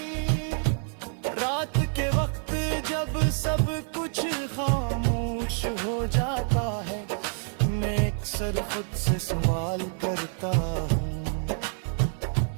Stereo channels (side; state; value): left; silent; 57 dB below the other